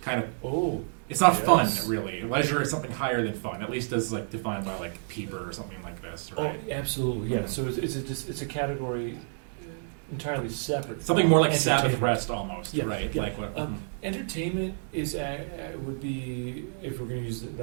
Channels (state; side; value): silent; left; digital silence